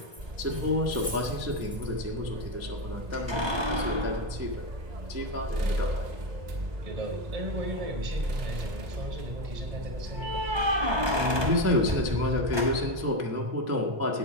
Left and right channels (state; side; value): late; left; 1.2 ms